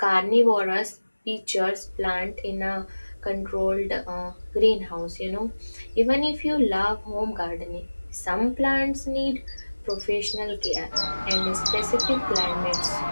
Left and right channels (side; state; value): both; inverted; correlation -1.00